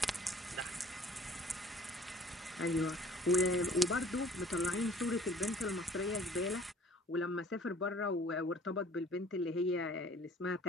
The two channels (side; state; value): both; normal; correlation 0.52